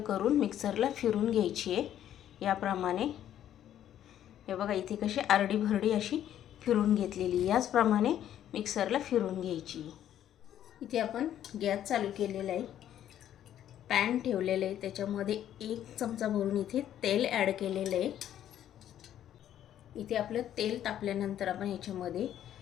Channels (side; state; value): right; quieter; 11.0 dB